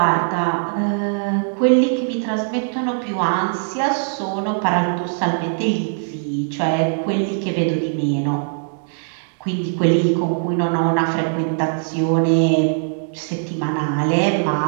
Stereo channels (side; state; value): left; silent; digital silence